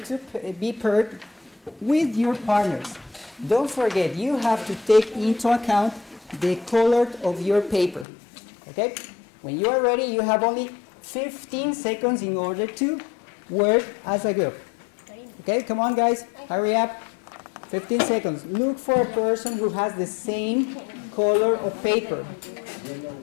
be paired with your partners. Don't forget, you have to take into account the color of your paper. Okay? When you are ready, you have only 15 seconds in order to work as a group. Okay, come on guys, hurry up. 15 seconds. Look for a person who has the same color of paper.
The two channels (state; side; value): drops out; right; at 8.1 s